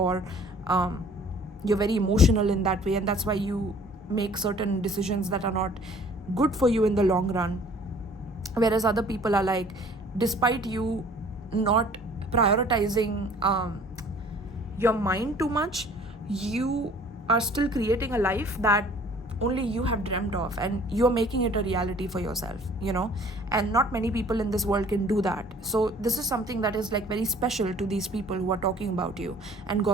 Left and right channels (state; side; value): normal; both; correlation 0.52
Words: you're very emotional in that way, and that's why you make certain decisions that are not good for you in the long run. Whereas other people are like, despite you not prioritizing your mind too much, you are still creating a life that only you have dreamt of, and you're making it a reality for yourself, and not many people in this world can do that. So this is something that is like very special to these people who are talking about you and